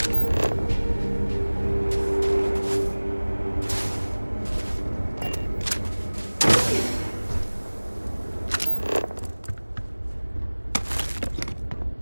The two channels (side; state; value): both; inverted; correlation -1.00